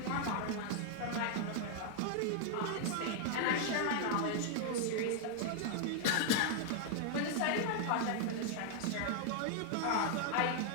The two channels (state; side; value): different; both; correlation 0.00